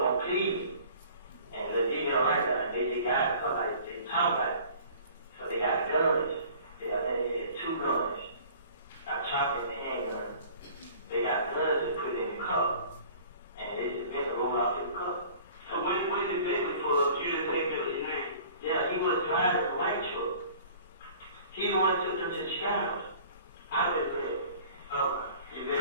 on plea, and the video right now, they got somebody, they talking about it. So they got guns, they had 2 guns, a chopper and a handgun. They got guns and put it in the cup, and they just been rolled out to the cup. So when did Bentley pull up, you didn't take Bentley's name? Yeah, he was driving a white truck. He the one took them to Chicago.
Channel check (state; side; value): inverted; both; correlation -0.48